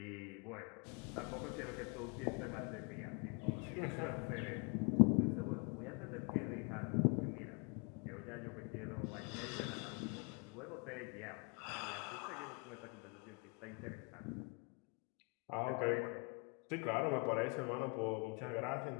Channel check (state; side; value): quieter; right; 32.2 dB